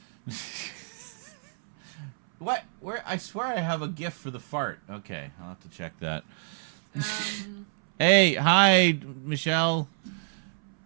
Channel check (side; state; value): left; silent; 59 dB below the other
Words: What? Where? I swear I have a gift for the fart. Okay, I'll have to check that. Hey, hi, Michelle.